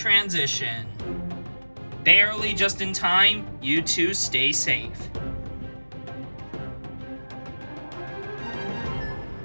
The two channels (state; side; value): inverted; both; correlation -1.00